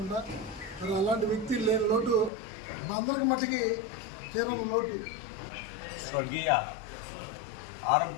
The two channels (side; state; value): right; drops out; at 2.3 s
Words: మరి అలాంటి వ్యక్తి లేని లోటు అందరికి మట్టికి తీరని లోటు. స్వర్గీయ